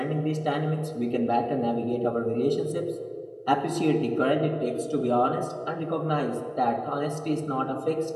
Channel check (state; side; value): identical; both; correlation 1.00